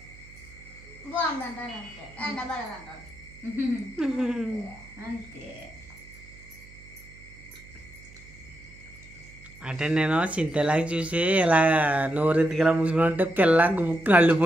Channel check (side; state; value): right; noise; hum, 22 dB below the sound